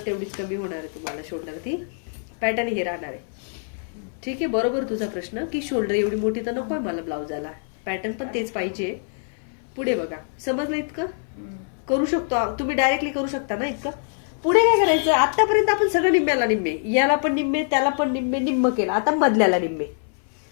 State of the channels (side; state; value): right; silent; 58 dB below the other